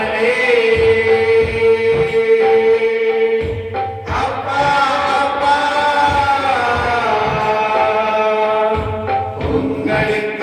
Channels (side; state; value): both; identical; correlation 1.00